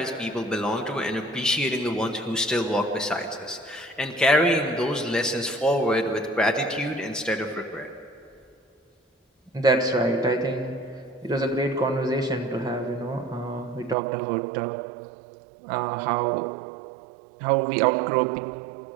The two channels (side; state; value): left; drops out; at 14.0 s